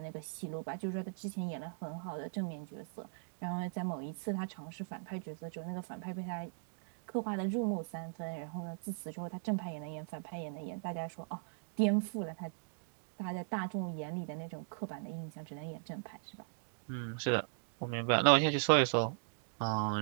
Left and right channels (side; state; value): left; silent; digital silence